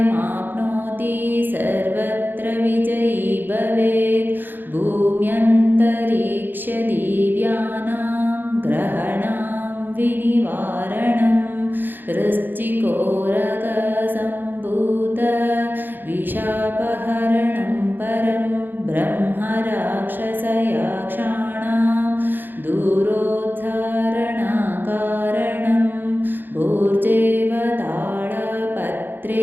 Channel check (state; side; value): late; left; 0.092 ms